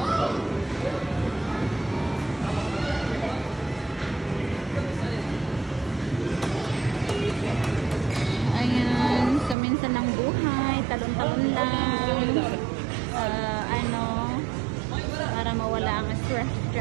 Ayan, so minsan ng buhay, talon-talon lang. Ano, para mawala ang stress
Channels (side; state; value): left; drops out; at 9.6 s